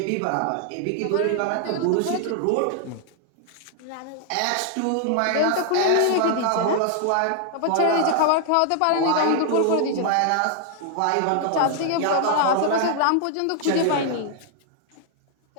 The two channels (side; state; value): both; different; correlation 0.00